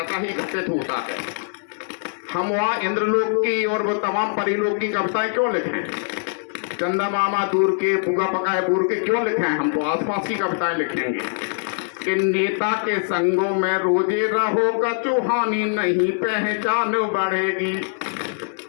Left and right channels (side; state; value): right; silent; digital silence